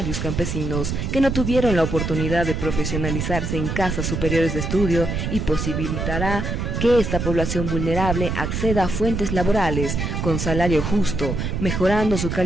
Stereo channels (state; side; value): noise; right; rumble, 2 dB below the sound